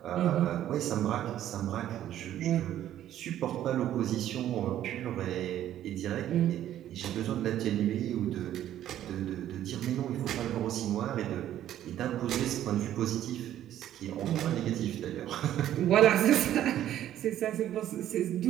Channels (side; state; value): left; quieter; 11.9 dB